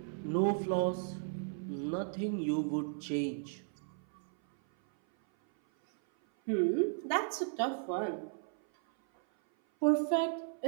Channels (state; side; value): silent; left; 55 dB below the other